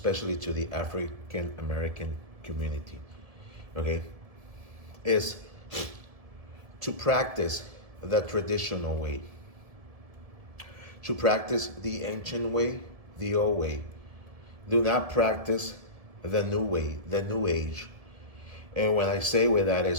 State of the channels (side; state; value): left; late; 1.7 ms